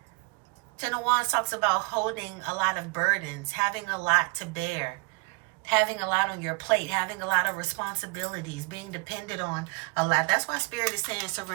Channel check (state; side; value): quieter; left; 30.4 dB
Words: Ten of Wands talks about holding a lot of burdens, having a lot to bear, having a lot on your plate, having a lot of responsibilities, being dependent on a lot. That's why Spirit is saying